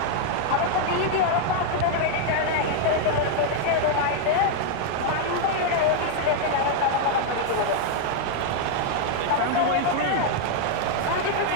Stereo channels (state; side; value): different; both; correlation 0.00